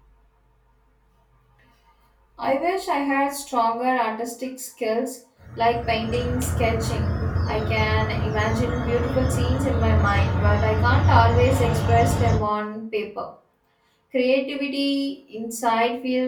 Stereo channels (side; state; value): both; identical; correlation 1.00